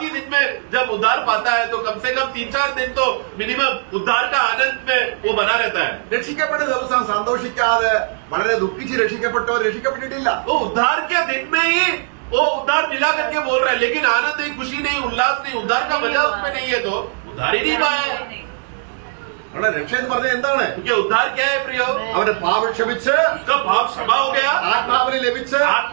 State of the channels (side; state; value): left; silent; 66 dB below the other